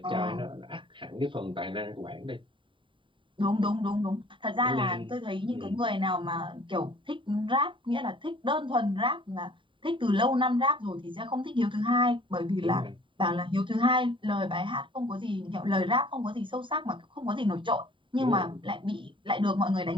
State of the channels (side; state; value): left; late; 0.24 ms